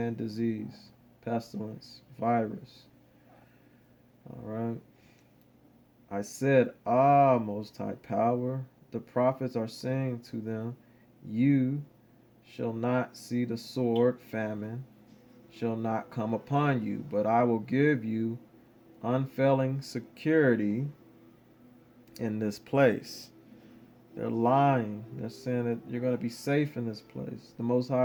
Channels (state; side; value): identical; both; correlation 1.00